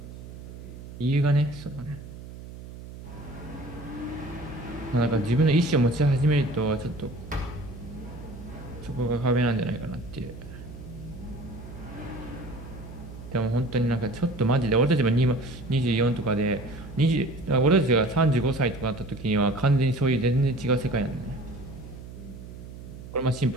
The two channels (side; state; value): right; noise; hum, 13 dB below the sound